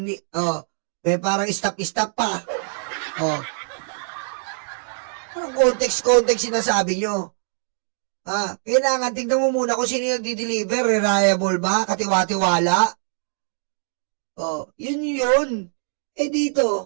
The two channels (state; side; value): silent; left; digital silence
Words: may parang stop pa. Anong context sinasabi nyo? Kailangan tingnan mo muna kung sino yung nagdi-deliver. Reliable ba? Katiwa-tiwala? Yun. Eh